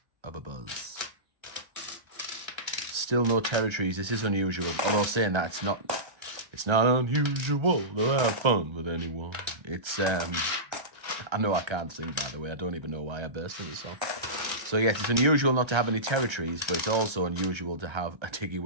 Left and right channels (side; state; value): left; late; 1.3 ms